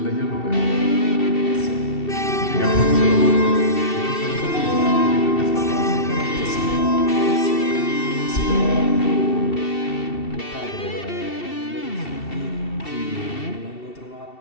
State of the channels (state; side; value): late; right; 2.7 ms